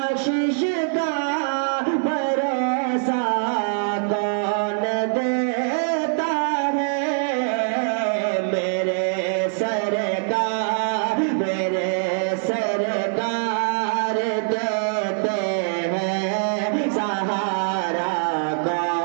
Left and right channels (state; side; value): silent; left; digital silence